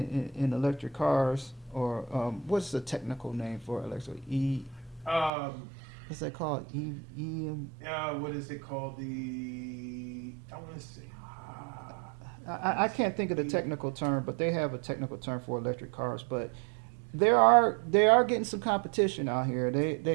electric cars, or what's the technical name for electric? What's that called? What is it called? I want to say. I can't think of the technical term, but they have a technical term for electric cars. But they are getting some competition out here.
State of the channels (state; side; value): drops out; left; at 5.3 s